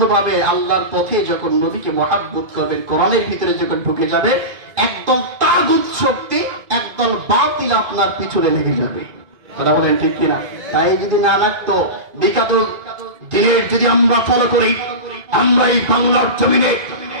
আল্লাহর পথে, যখন নবীকে মহাব্বত করবেন, কোরআনের ভিতরে যখন ঢুকে যাবে, একদল তাগুত শক্তি, একদল বাতিল আপনার পিছনে লেগে যাবে। কথা বলেন ঠিক কিনা? তাই যদি না লাগতো, বিগত দিনের যদি আমরা ফলো করি, আমরা এই বাংলার জমিনে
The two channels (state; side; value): late; left; 2.5 ms